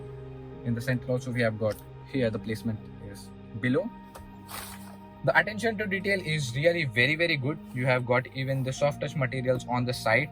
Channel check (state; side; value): identical; both; correlation 1.00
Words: In the center also we have got here, the placement is below. The attention to detail is really very good. You have got even the soft touch materials on the side,